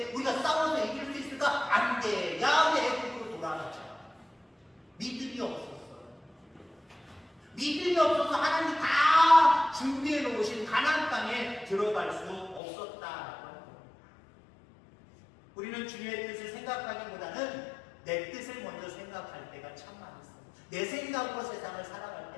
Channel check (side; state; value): right; drops out; at 12.6 s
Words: 우리가 싸워서 이길 수 있을까? 안 돼. 야외 애국으로 돌아가자. 믿음이 없었어요. 믿음이 없어서 하나님이 다 준비해 놓으신 가나안 땅에 들어갈 수 없었다라고 하는 겁니다. 우리는 주님의 뜻을 생각하기보다는 내 뜻을 먼저 생각할 때가 참 많았어요. 내 생각으로 세상을 살아갈